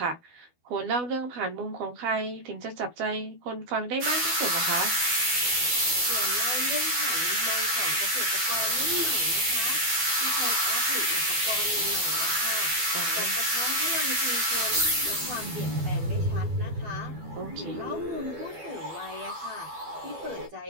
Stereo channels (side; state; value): left; late; 12 ms